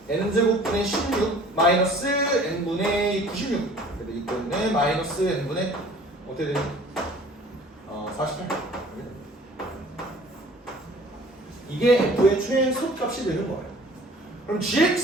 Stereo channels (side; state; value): both; normal; correlation 0.50